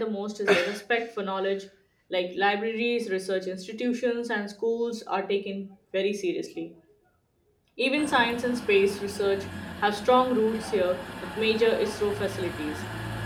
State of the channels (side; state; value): both; identical; correlation 1.00